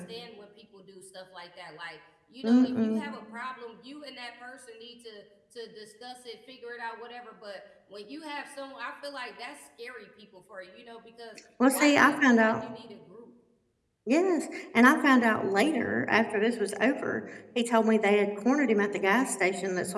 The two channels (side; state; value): both; identical; correlation 1.00